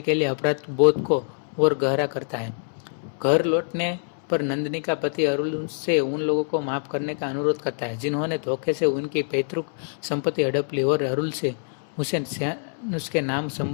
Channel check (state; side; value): silent; right; 62 dB below the other